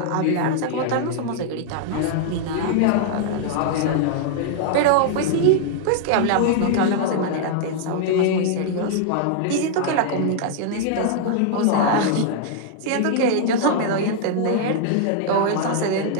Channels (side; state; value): both; different; correlation -0.01